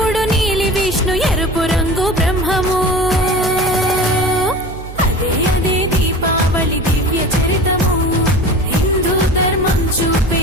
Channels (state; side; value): noise; right; hum, 12 dB below the sound